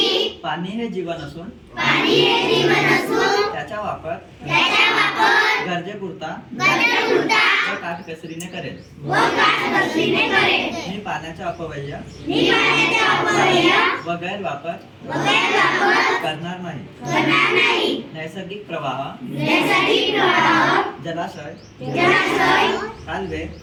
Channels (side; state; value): both; identical; correlation 1.00